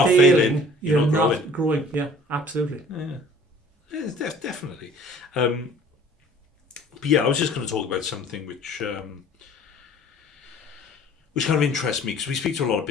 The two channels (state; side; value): normal; both; correlation 0.50